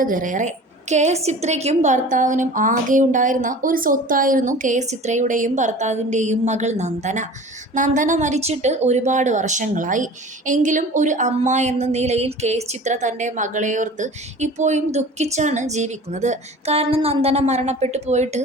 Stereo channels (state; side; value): normal; both; correlation 0.41